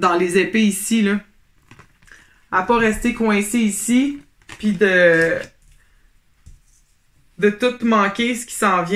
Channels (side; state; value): both; identical; correlation 1.00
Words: les épées ici, là. À pas rester coincé ici, puis de tout manquer ce qui s'en